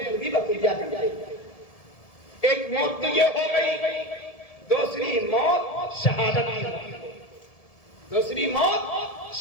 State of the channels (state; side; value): late; right; 1.7 ms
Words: بھی بقیہ کرتے ہیں. ایک موت تو یہ ہو گئی، دوسری موت شہادت کی موت. دوسری موت